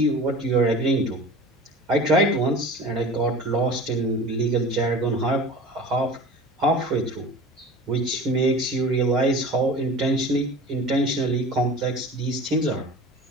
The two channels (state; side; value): normal; both; correlation 0.37